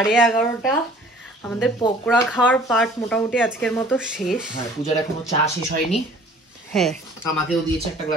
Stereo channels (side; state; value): both; normal; correlation 0.51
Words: আমাদের পকোড়া খাওয়ার পার্ট মোটামুটি আজকের মতো শেষ। হ্যাঁ, পূজার এখনো চা শেষ হয়নি। হ্যাঁ, আমাকেও দিয়েছে একটা